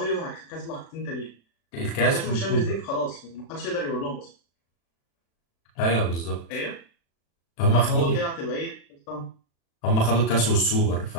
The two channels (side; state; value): right; late; 36 ms